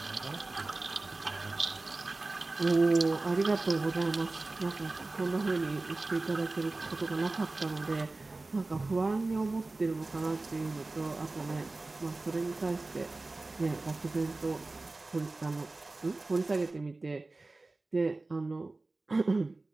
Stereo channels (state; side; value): quieter; left; 3.2 dB